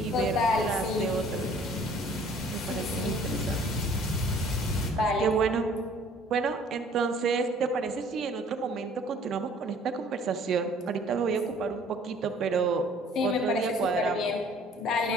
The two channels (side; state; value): both; normal; correlation 0.54